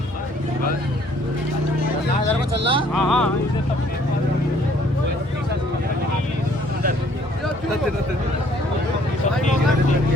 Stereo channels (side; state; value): both; normal; correlation 0.61